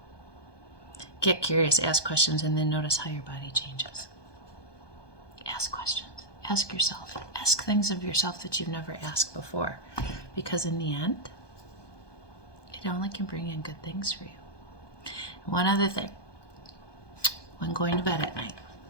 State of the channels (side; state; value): right; late; 1.2 ms